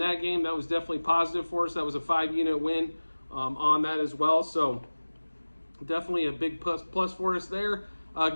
game, that was definitely positive for us. That was a 5-unit win on that as well. So definitely a big plus for us there.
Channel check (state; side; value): inverted; both; correlation -1.00